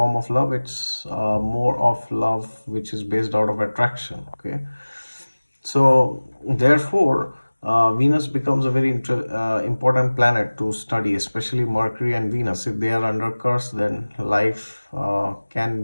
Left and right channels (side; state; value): both; inverted; correlation -1.00